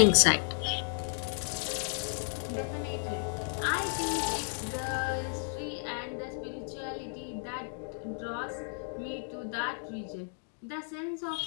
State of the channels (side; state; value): right; silent; digital silence